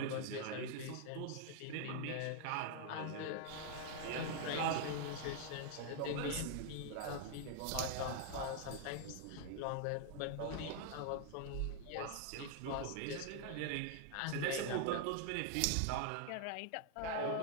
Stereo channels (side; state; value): both; different; correlation 0.00